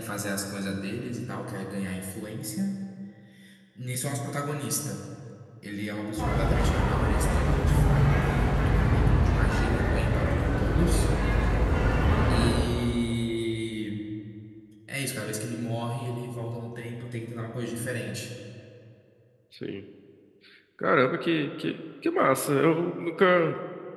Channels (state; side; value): identical; both; correlation 1.00